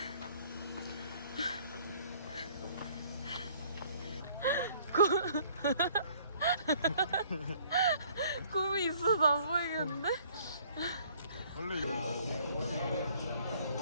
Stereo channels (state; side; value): inverted; both; correlation -0.58